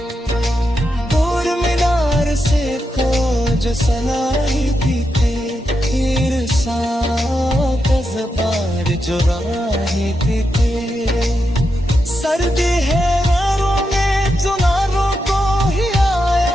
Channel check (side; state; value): both; normal; correlation 0.86